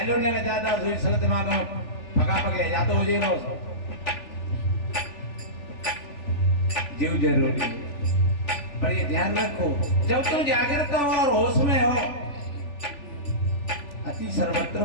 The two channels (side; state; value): right; late; 3.4 ms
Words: लो ने ज्यादा सर दिमाग में पका पके या तो हो जाएगा जीव जरूरी है। पर ये ध्यान रखो जब तुम जागृत हो और होश में हो अति